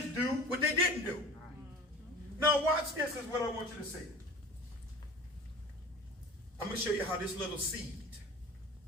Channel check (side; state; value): both; normal; correlation 0.39